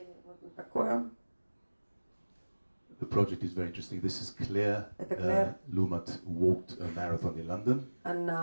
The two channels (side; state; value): both; inverted; correlation -1.00